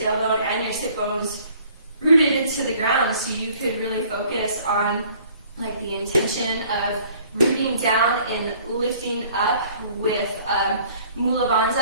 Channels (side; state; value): both; inverted; correlation -0.56